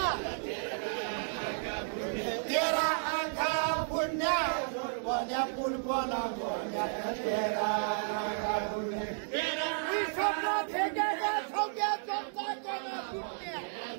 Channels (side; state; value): left; silent; digital silence